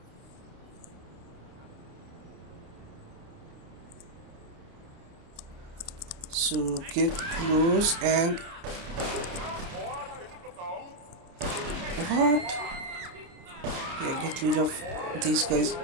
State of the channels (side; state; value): left; late; 29 ms